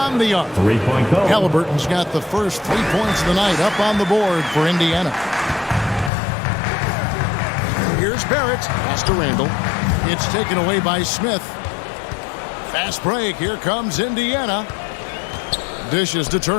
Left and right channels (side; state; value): right; drops out; at 6.1 s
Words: the arc. Three-point goal. Halliburton's got the first 3 points of the night up on the board for Indiana. Here's Barrett. Pass to Randall. It's taken away by Smith. Fast break. Here comes Indiana. Dishes to